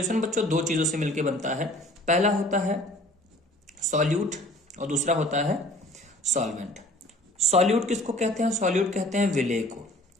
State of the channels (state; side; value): normal; both; correlation 0.50